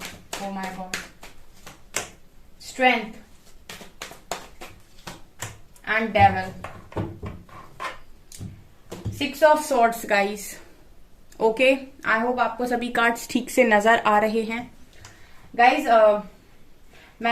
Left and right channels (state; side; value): identical; both; correlation 1.00